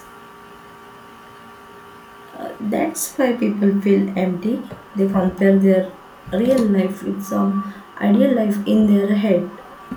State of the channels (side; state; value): both; identical; correlation 1.00